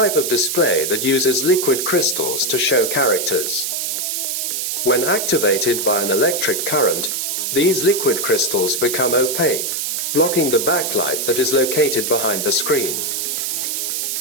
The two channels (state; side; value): noise; right; hiss, 1 dB below the sound